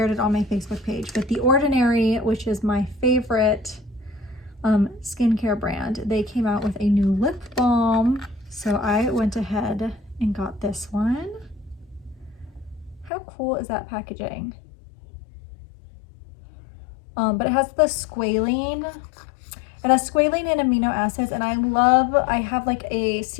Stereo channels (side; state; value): right; drops out; at 13.1 s